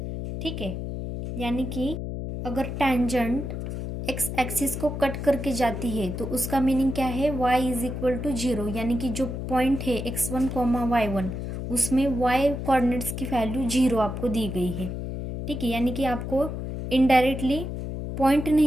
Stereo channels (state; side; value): noise; left; hum, 5 dB below the sound